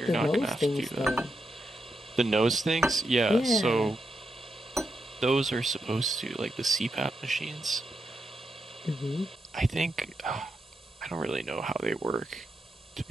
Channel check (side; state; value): both; normal; correlation 0.84